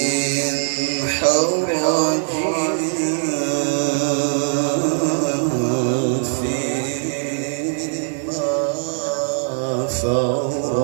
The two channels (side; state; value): left; silent; 60 dB below the other